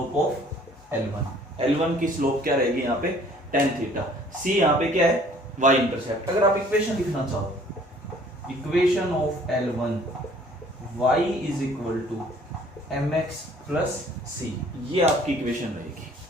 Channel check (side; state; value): both; normal; correlation 0.55